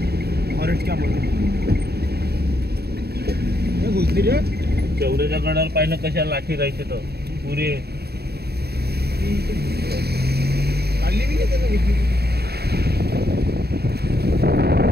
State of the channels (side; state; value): left; late; 0.47 ms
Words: फॉरेस्ट कॅम्प घुसली रे चौऱ्याच्या गडावर पाहिलं कशा लाठी राहायचे तर पुरे काढली मी